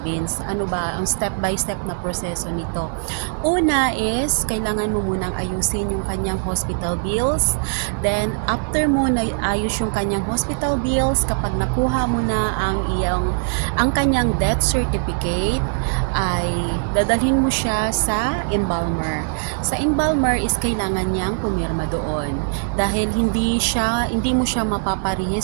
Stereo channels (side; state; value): left; silent; 65 dB below the other